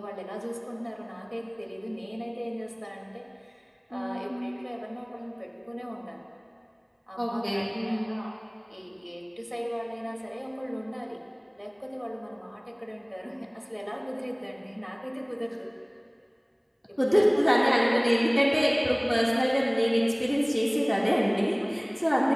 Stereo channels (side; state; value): both; identical; correlation 1.00